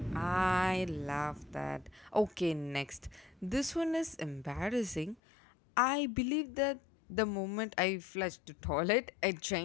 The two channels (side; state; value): right; drops out; at 5.2 s